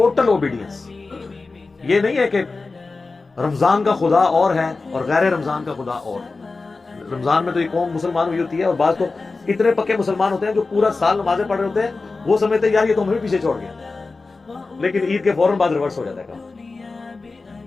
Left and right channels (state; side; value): quieter; right; 3.8 dB